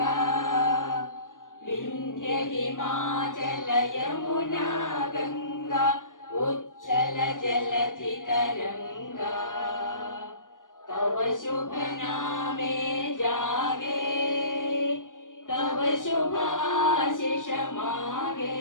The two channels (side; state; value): right; late; 0.88 ms